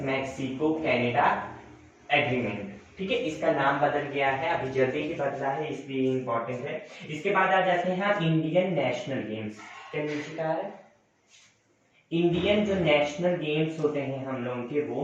Mexico Canada agreement. ठीक है, इसका नाम बदल गया है, अभी जल्दी ही बदला है, इसलिए इंपॉर्टेंट है। इसके बाद आ जाते हैं आप इंडियन नेशनल गेम्स। क्या नीचे का है? इंडियन जो नेशनल गेम्स होते हैं हम लोगों के,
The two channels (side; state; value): both; identical; correlation 1.00